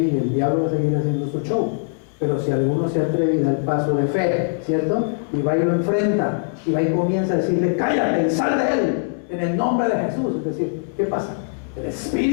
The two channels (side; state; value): right; silent; digital silence